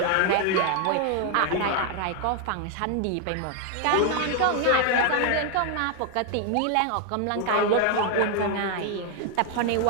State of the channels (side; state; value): both; different; correlation 0.01